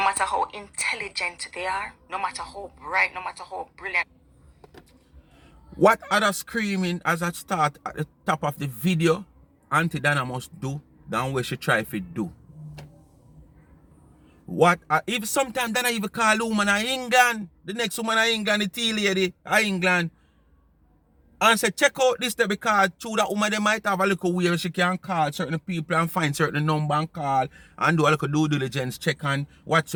how intelligent they are, no matter how bright, no matter how brilliant. What other screaming as I start at the top of the video, Auntie Donna must do than what she try to do. What if sometimes Donna even call woman in England, the next woman in England, the tea lady in England, and say check out this there because through that woman they might have a little way she can call certain people and find certain number and call and do a little due diligence check and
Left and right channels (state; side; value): identical; both; correlation 1.00